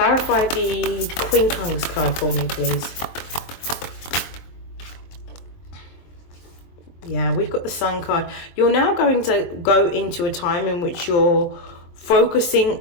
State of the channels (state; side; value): late; right; 23 ms